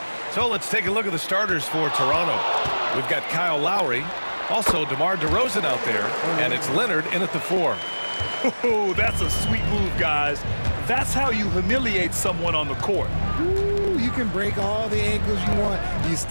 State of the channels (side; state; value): both; inverted; correlation -1.00